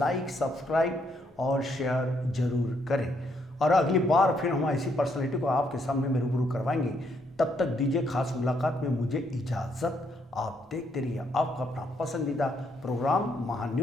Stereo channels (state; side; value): normal; both; correlation 0.73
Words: सब्सक्राइब और शेयर जरूर करें। और अगली बार फिर हम ऐसी पर्सनैलिटी को आपके सामने में रूबरू करवाएंगे। तब तक दीजिए खास मुलाकात में मुझे इजाज़त। आप देखते रहिए आपका अपना पसंदीदा प्रोग्राम